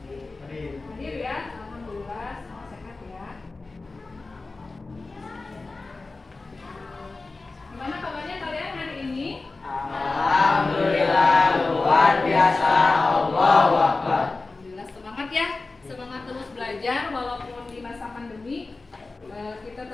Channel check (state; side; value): quieter; right; 3.6 dB